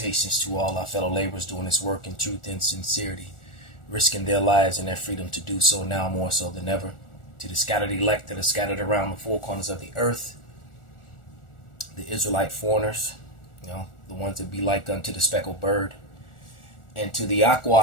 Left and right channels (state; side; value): late; right; 1.4 ms